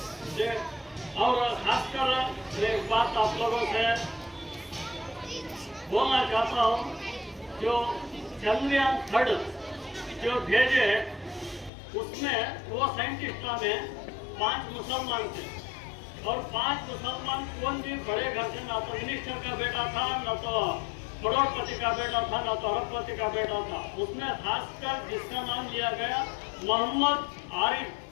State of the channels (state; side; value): drops out; right; at 11.7 s